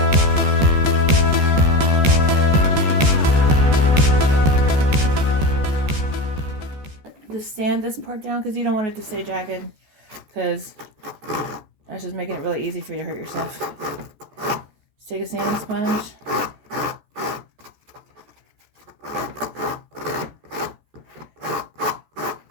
Just sand this part down because you don't want it to stay jagged, because that's just making it really easy for you to hurt yourself. Just take a sanding sponge.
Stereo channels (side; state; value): left; late; 14 ms